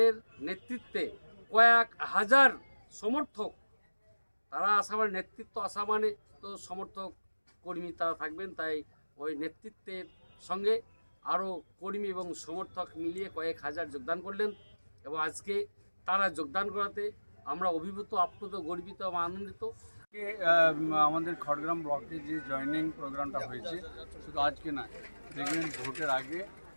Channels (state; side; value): inverted; both; correlation -1.00